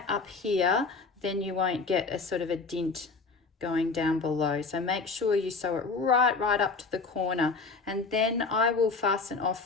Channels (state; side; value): quieter; right; 4.3 dB